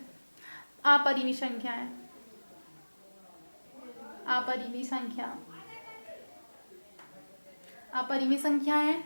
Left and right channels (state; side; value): inverted; both; correlation -1.00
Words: अपरिमेय संख्याएं, अपरिमेय संख्या, अपरिमेय संख्याएं